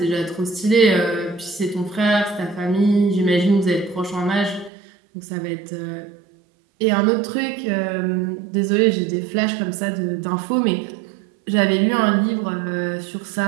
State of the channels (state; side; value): drops out; left; at 4.7 s